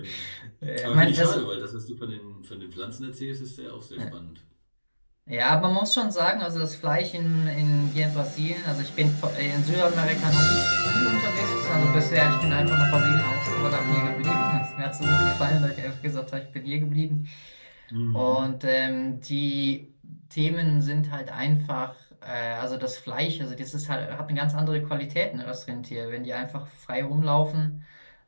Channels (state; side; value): inverted; both; correlation -1.00